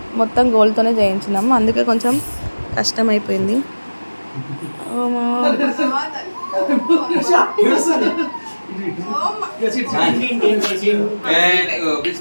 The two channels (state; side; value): inverted; both; correlation -1.00